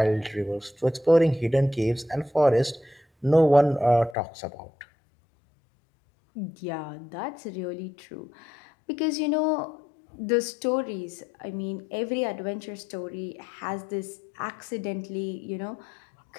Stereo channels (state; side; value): drops out; right; at 4.2 s